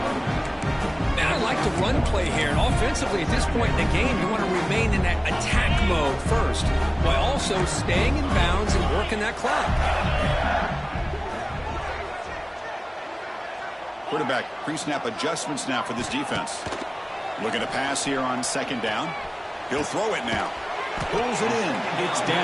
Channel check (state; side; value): identical; both; correlation 1.00